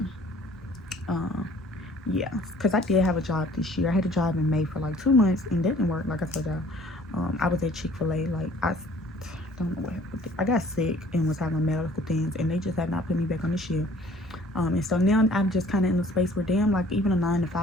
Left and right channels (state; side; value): normal; both; correlation 0.54